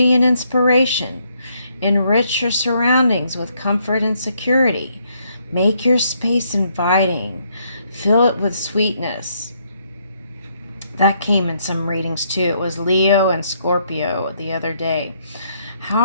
and inspiration. Enrich your surroundings with comfort and security. Make your space inviting. Fill it with sweetness. That came in some readings too. It was Leo and Scorpio the other day.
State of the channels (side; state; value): both; inverted; correlation -0.72